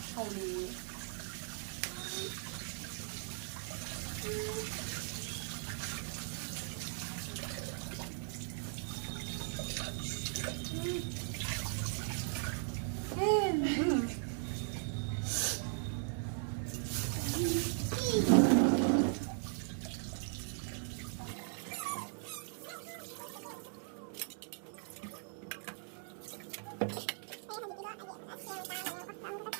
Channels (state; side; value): silent; left; 52 dB below the other